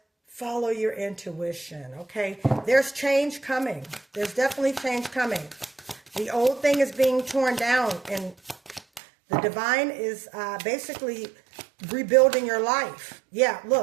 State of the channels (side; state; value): left; drops out; at 9.0 s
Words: follow your intuition, okay? There's change coming. There's definitely change coming. The old thing is being torn down, and the divine is basically rebuilding your life. Yeah,